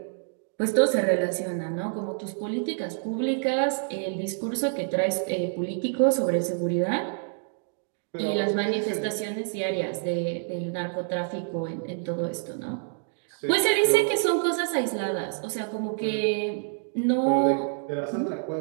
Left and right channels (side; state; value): left; silent; digital silence